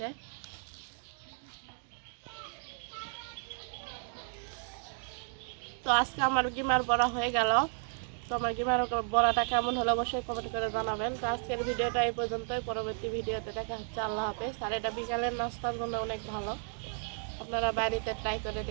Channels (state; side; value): silent; left; 55 dB below the other